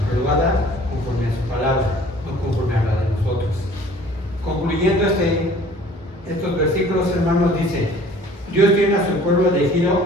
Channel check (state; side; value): normal; both; correlation 0.51